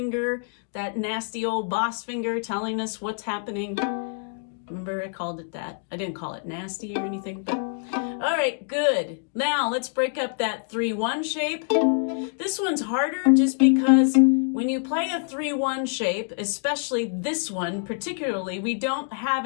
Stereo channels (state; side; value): silent; right; 61 dB below the other